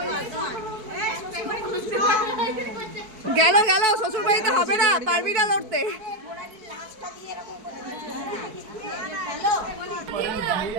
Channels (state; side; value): late; left; 4.6 ms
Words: গেল গেল, শ্বশুর বাড়িতে হবে না, পারবি না লড়তে।